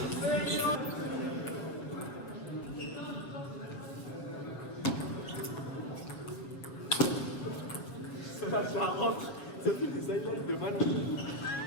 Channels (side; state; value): right; late; 7.4 ms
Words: Ça rentre, ça fait des highlights de ballon.